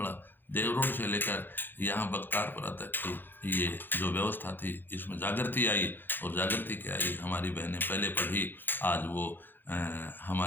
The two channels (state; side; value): late; right; 0.096 ms